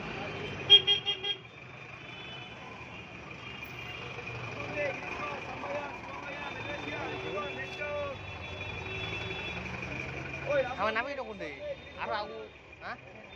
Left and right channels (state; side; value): identical; both; correlation 1.00